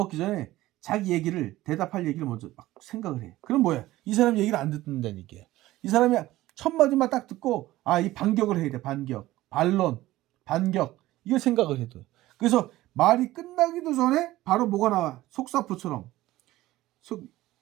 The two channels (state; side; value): quieter; left; 16.5 dB